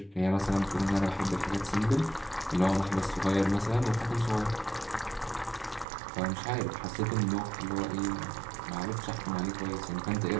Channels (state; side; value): drops out; left; at 5.9 s